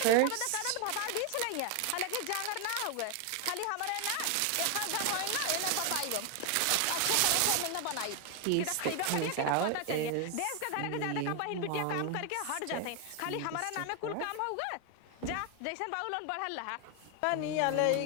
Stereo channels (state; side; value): different; both; correlation 0.01